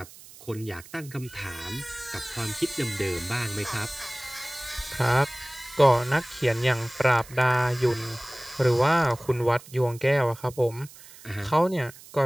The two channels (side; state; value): right; noise; hiss, 20 dB below the sound